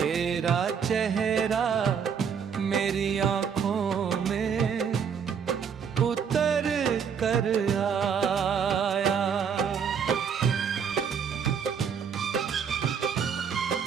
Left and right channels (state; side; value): quieter; left; 7.0 dB